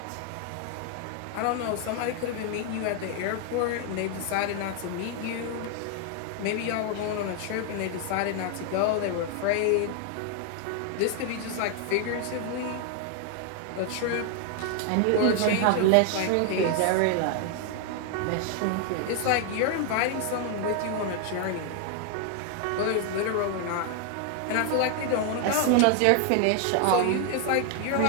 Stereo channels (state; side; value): different; both; correlation 0.00